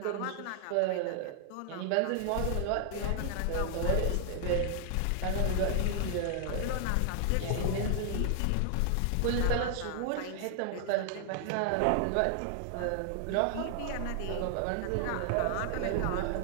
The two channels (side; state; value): both; different; correlation 0.00